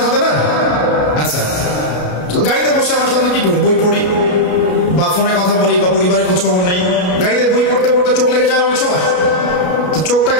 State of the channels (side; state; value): right; late; 33 ms